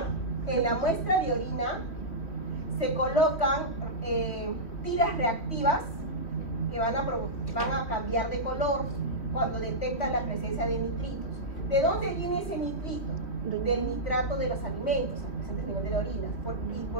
En la muestra de orina se colocan tiras reactivas que van a cambiar de color cuando detectan la presencia de nitritos. ¿De dónde viene ese nitrito? Del nitrato de los alimentos presentes a nivel de la orina. ¿Y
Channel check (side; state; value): right; late; 3.0 ms